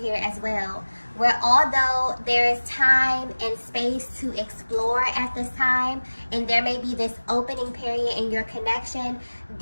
as well, where although there is time and space to explore at this time, and there may be this opening period in your connection,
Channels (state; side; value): inverted; both; correlation -1.00